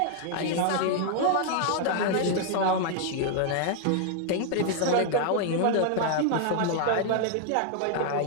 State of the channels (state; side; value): different; both; correlation 0.00